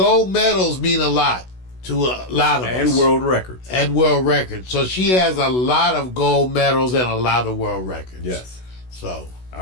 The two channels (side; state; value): right; late; 16 ms